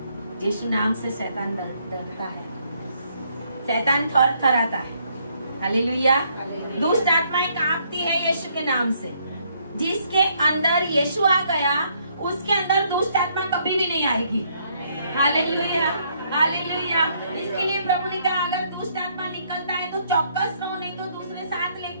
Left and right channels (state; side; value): inverted; both; correlation -0.70